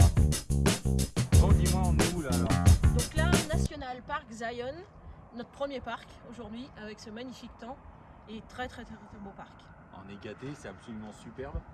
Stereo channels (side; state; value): both; identical; correlation 1.00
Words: Bon, dis-moi, on est où là alors? Donc là, National Park Zion, notre premier parc aujourd'hui, avec ce magnifique temps et très beau parc. On est gâté, c'est absolument superbe.